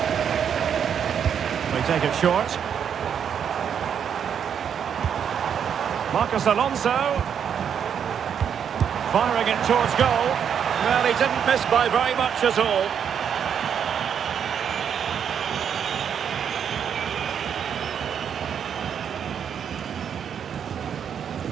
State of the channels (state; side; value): quieter; left; 8.0 dB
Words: Take it short. Marcos Alonso. Firing it towards goal. Well, he didn't miss by very much at all.